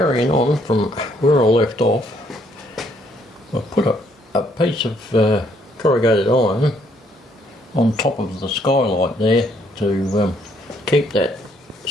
on from where I left off, I put a piece of corrugated iron on top of the skylight there to keep that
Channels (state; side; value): normal; both; correlation 0.68